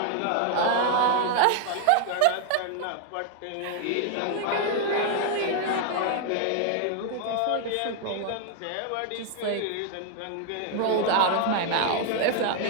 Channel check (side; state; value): both; different; correlation 0.00